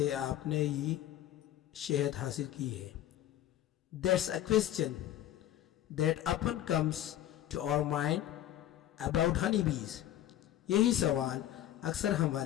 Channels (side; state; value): right; quieter; 12.6 dB